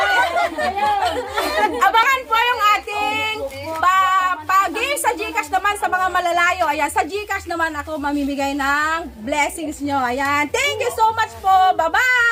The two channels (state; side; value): identical; both; correlation 1.00